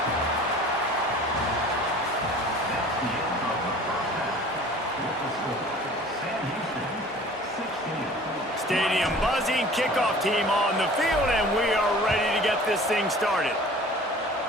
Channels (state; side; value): normal; both; correlation 0.46